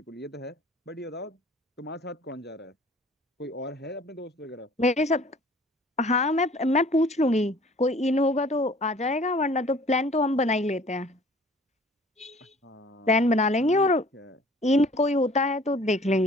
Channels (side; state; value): both; normal; correlation 0.52